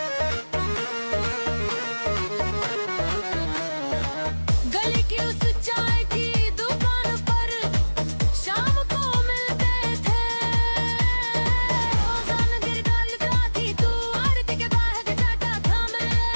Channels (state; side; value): inverted; both; correlation -1.00